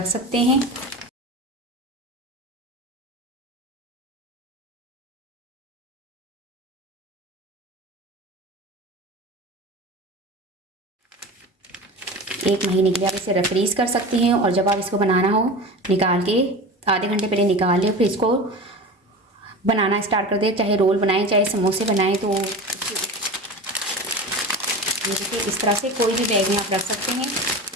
सकते हैं। एक महीने के लिए आप इसे फ्रीज कर सकती हैं। और जब आप इसको बनाना हो, निकाल के आधे घंटे पहले निकाल लें, फिर इसको बनाना स्टार्ट कर दें। चाहे रोल बनाएं, चाहे समोसे बनाएं। तो देखिए इस तरह से कोई भी बैग में आप रख सकते हैं।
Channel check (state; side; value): normal; both; correlation 0.31